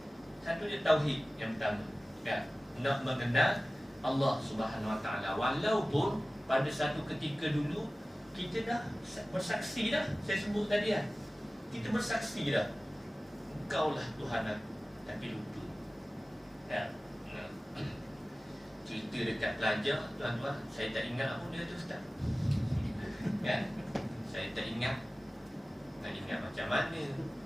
satu dia tauhid yang pertama, kan? Nak mengenal Allah Subhanahu Wa Ta'ala. Walaupun pada satu ketika dulu kita dah bersaksi dah, saya sebut tadi kan, kita bersaksi dah, Engkaulah Tuhan aku, tapi lupa. Ya. Cerita dekat pelajar, tuan-tuan, saya tak ingat apa dia tu Ustaz. Kan? Saya tak ingat. Tak ingat macam mana.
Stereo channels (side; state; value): both; normal; correlation 0.97